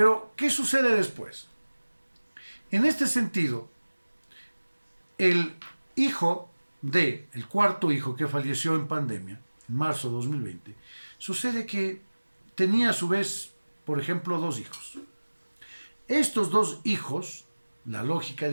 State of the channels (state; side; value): inverted; both; correlation -1.00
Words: ¿qué sucede después? En este sentido, el cuarto hijo que falleció en pandemia, en marzo de 2020, sucede que tenía a su vez, por ejemplo, 2 hijos. Estos 2 hijos, la lógica